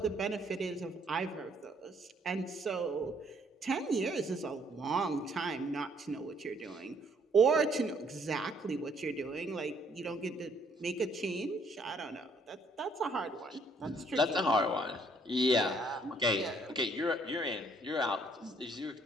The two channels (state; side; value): normal; both; correlation 0.65